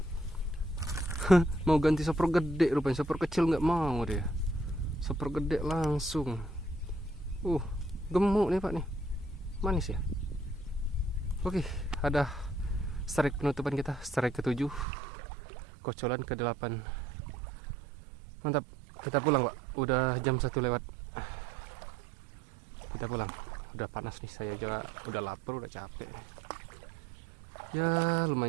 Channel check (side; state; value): left; drops out; at 14.9 s